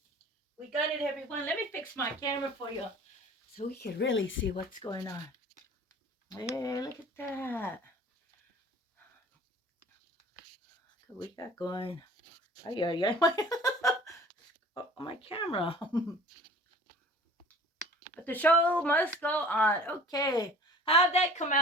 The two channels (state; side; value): normal; both; correlation 0.45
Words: We got it, everyone. Let me fix my camera for you so we can really see what's going on. Hey, look at that. Look what we got going. Ay, ay, ay. Oh, my camera. But the show must go on. Okay. How'd that come